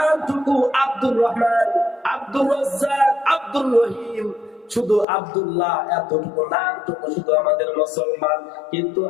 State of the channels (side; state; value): right; drops out; at 5.1 s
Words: আব্দুর রহমান, আব্দুর রাজ্জাক, আব্দুর রহিম, শুধু আব্দুল্লাহ, এতটুকু নামটুকু শুধু আমাদের মুসলমান। কিন্তু